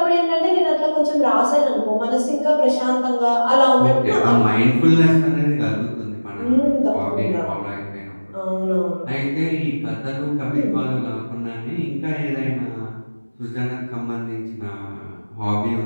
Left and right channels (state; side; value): inverted; both; correlation -1.00